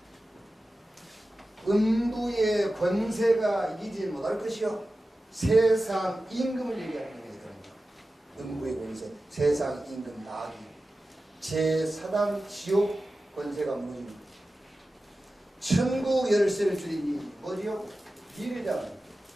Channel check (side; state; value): both; normal; correlation 0.94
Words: 음부의 권세가 이기지 못할 것이요. 세상 임금을 얘기하는 거예요. 음부의 권세, 세상 임금 마귀. 제4단 지옥 권세가 무너집니다. 천국 열쇠를 주리니 뭐지요? 비례잖아요.